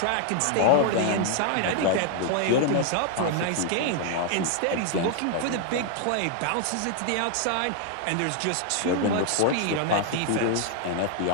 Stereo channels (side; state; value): both; different; correlation 0.00